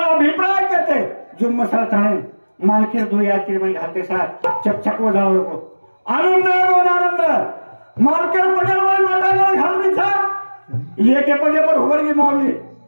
अभिप्राय कहते जो मसाला थाने मालके दो या कि मैं घाते साथ चकचक हो जाओ को आनंद मालके पडल वाली माता घालनी था ये के पजे पर होवर की मौली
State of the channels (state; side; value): inverted; both; correlation -1.00